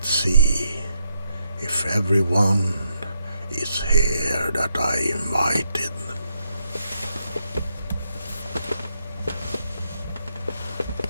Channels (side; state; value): both; inverted; correlation -0.77